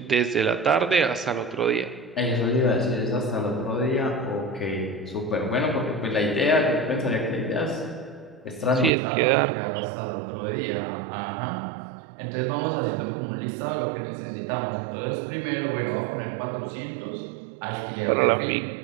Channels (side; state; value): left; drops out; at 8.9 s